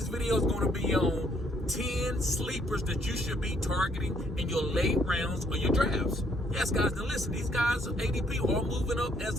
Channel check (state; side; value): normal; both; correlation 0.68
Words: video is going to be on 10 sleepers that you should be targeting in your late rounds or your drafts. Yes, guys, now listen, these guys' ADP are moving up as